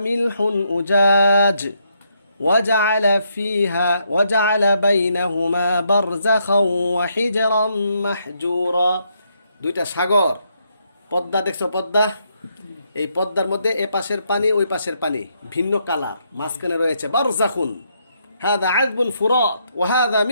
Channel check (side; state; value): both; inverted; correlation -0.75